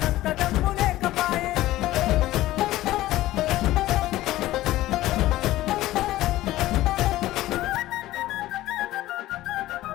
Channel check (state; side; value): quieter; right; 16.0 dB